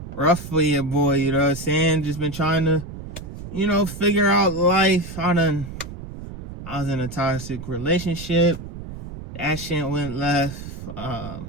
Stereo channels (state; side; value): noise; right; rumble, 11 dB below the sound